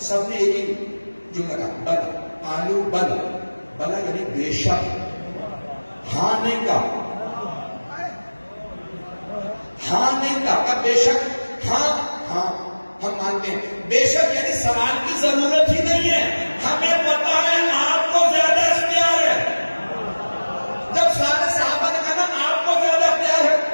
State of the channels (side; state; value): both; inverted; correlation -1.00